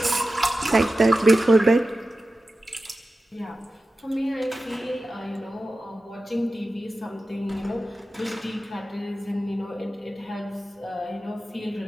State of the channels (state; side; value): normal; both; correlation 0.94